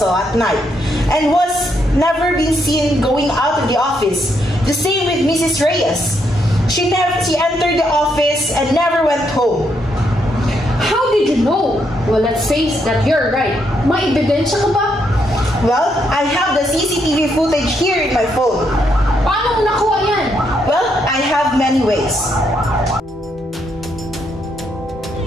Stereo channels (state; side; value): normal; both; correlation 0.76